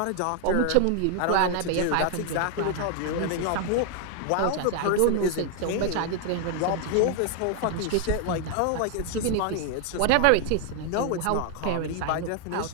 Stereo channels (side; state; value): both; different; correlation 0.00